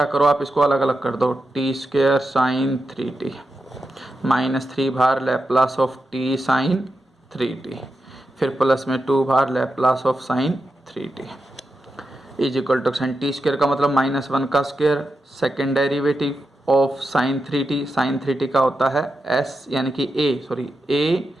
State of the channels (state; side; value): normal; both; correlation 0.88